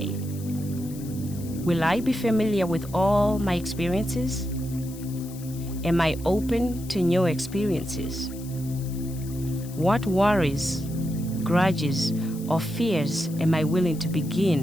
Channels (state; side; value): noise; left; hiss, 18 dB below the sound